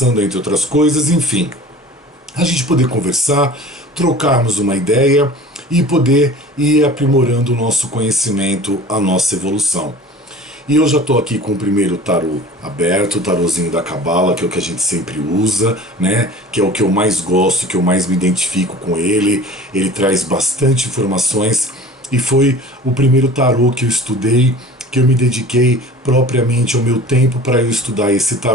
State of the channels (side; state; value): both; normal; correlation 0.42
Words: entre outras coisas, enfim. A gente poder conversar, trocarmos uma ideia e poder ir aprimorando o nosso conhecimento, a nossa evolução. E eu já estou aqui com o primeiro tarô aberto, o tarôzinho da Cabala, que é o que a gente sempre usa, né? Que é o que eu mais gosto, que eu mais me identifico com ele. Ele traz bastante informações e foi o primeiro tarô que eu estudei, que eu me dediquei propriamente ao meu tempo para eu estudar esse